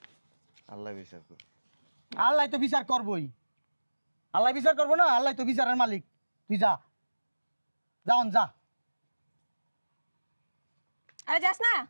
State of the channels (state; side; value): inverted; both; correlation -1.00